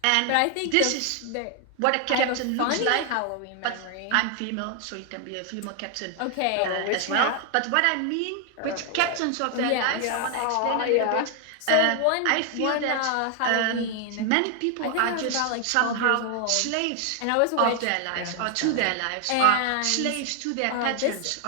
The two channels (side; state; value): both; different; correlation 0.00